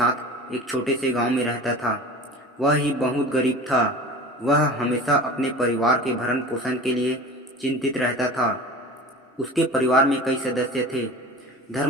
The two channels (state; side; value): normal; both; correlation 0.37